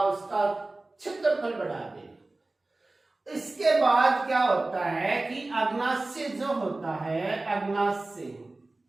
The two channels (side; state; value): left; quieter; 3.0 dB